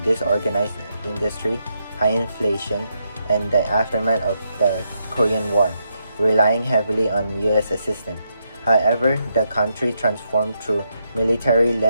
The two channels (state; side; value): inverted; both; correlation -0.81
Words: disorganized industry, high inflation, and the aftermath of the Korean War, relying heavily on U.S. assistance. However, the country transformed through